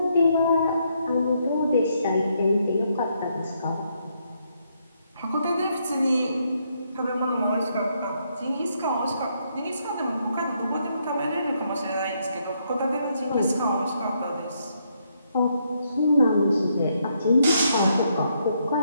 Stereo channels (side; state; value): both; inverted; correlation -0.76